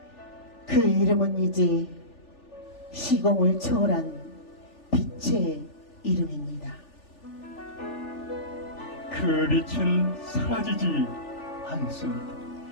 그 이름은 이제 시공을 초월한 빛의 이름입니다. 그 빛은 사라지지 않습니다.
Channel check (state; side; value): late; right; 3.4 ms